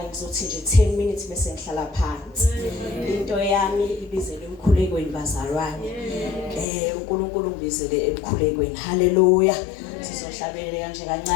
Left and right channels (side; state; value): right; drops out; at 6.7 s